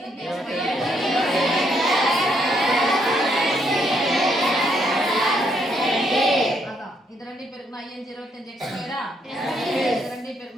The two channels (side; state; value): both; normal; correlation 0.73